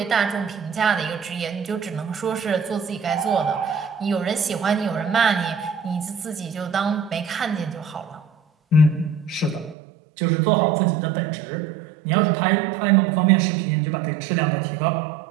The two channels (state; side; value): drops out; left; at 9.8 s